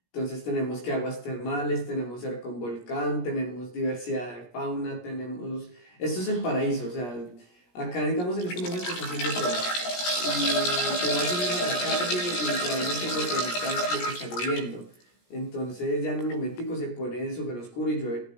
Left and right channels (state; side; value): late; right; 17 ms